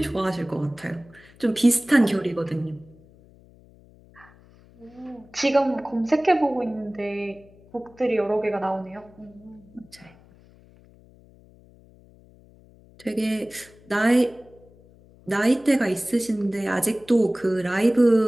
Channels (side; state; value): left; noise; hum, 26 dB below the sound